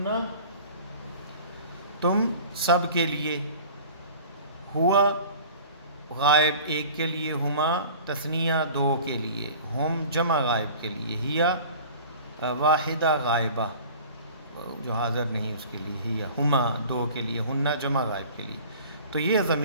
تم سب کے لیے، ہوا غائب ایک کے لیے، ہما تثنیہ دو کے لیے، ہم جمع غائب کے لیے، ہیا واحدہ غائبہ جو حاضر نہیں اس کے لیے، ہیا ہما دو کے لیے، ہنہ جمع غائب کے لیے. تو یہ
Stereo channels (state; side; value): inverted; both; correlation -0.43